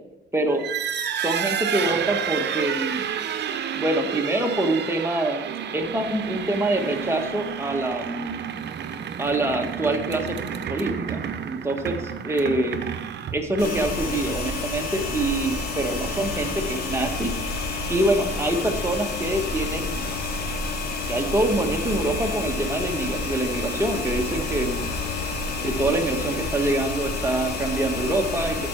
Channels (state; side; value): normal; both; correlation 0.52